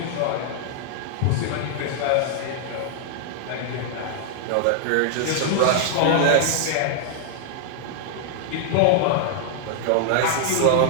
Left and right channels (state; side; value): different; both; correlation -0.01